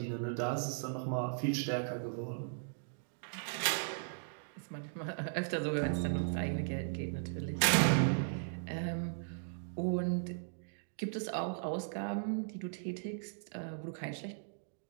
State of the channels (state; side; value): silent; left; digital silence